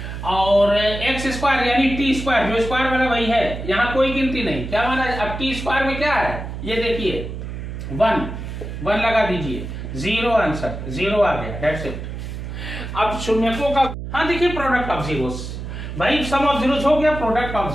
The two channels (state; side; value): noise; right; hum, 7 dB below the sound